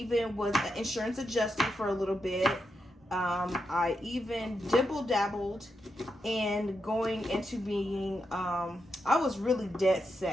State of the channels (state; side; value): normal; both; correlation 0.85